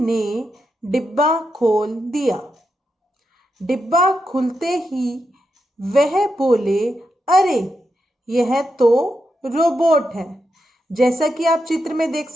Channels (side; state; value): both; normal; correlation 0.85